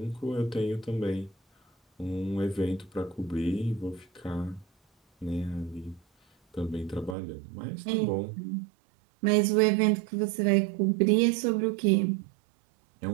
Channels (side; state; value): left; drops out; at 7.2 s